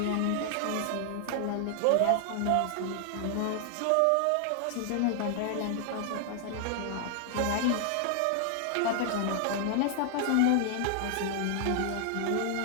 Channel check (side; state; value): both; different; correlation 0.00